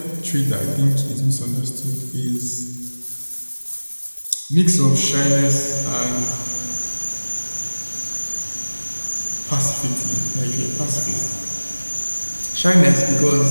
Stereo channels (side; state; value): both; inverted; correlation -1.00